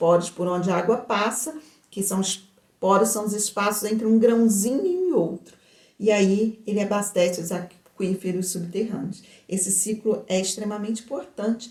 por onde a água passa, que são os poros, são os espaços entre um grãozinho e outro. E aí ele abastece os aquíferos subterrâneos. Esse ciclo é extremamente importante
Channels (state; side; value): identical; both; correlation 1.00